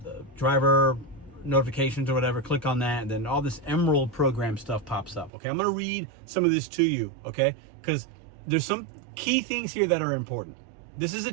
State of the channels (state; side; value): drops out; left; at 5.3 s